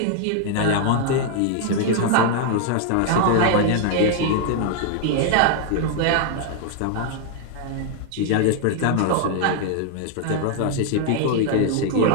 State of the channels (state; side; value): different; both; correlation 0.00